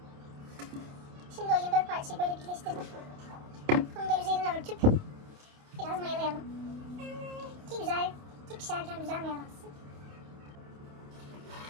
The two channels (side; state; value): left; late; 28 ms